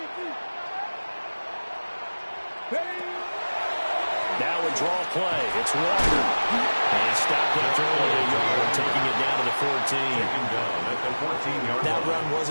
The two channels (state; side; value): inverted; both; correlation -1.00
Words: Now a draw play. It's Walker. And he stopped after only a yard, taking it down to the 14. That run